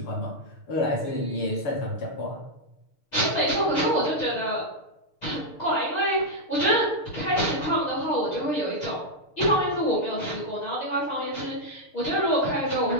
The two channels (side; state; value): right; late; 6.7 ms